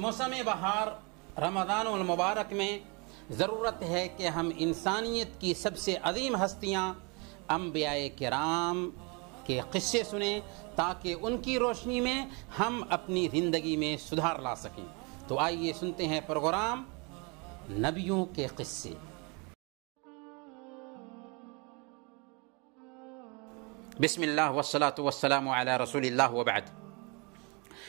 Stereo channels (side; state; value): left; quieter; 30.7 dB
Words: بہار رمضان المبارک میں ضرورت ہے کہ ہم انسانیت کی سب سے عظیم ہستیاں انبیاء کرام کے قصے سنیں تاکہ ان کی روشنی میں ہم اپنی زندگی میں سدھار لا سکیں۔ تو آئیے سنتے ہیں پروگرام نبیوں کے قصے۔ بسم اللہ والصلاة والسلام علی رسول اللہ وبعد۔